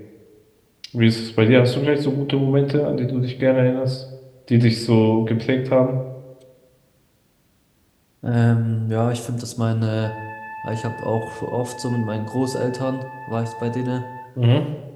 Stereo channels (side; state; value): both; identical; correlation 1.00